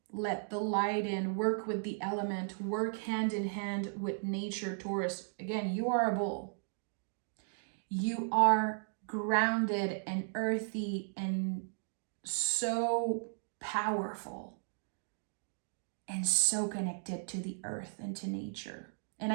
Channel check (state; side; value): silent; left; digital silence